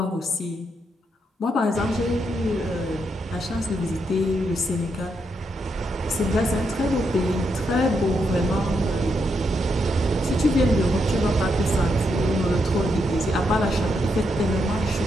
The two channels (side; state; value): both; normal; correlation 0.80